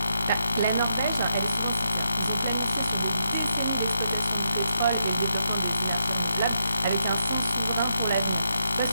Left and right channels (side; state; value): both; inverted; correlation -0.81